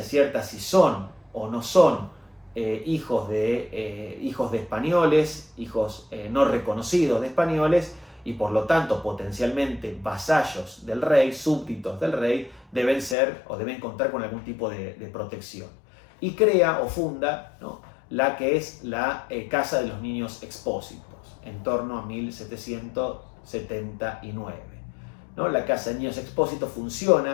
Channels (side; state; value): right; drops out; at 13.2 s